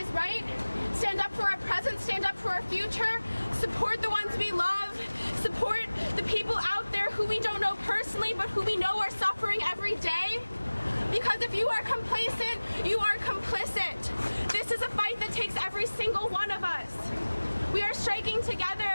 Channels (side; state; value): both; inverted; correlation -1.00